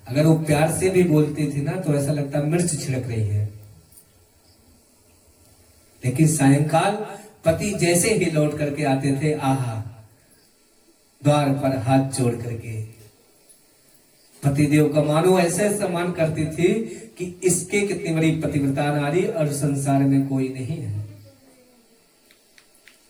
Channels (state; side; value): identical; both; correlation 1.00